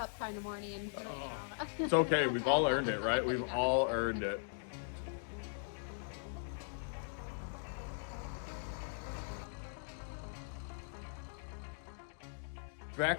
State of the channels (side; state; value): right; silent; digital silence